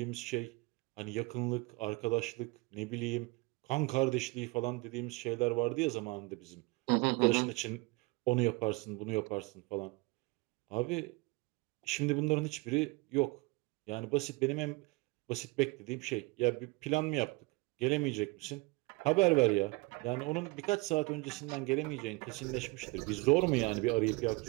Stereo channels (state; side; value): quieter; left; 25.3 dB